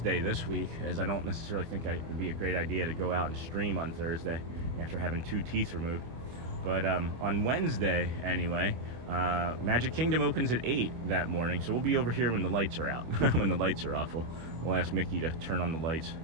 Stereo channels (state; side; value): late; left; 25 ms